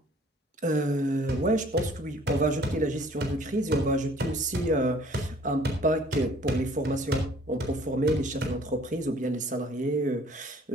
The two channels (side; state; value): both; normal; correlation 0.55